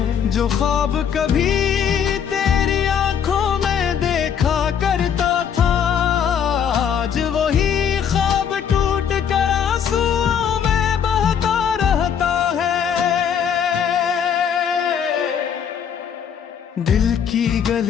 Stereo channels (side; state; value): right; quieter; 7.9 dB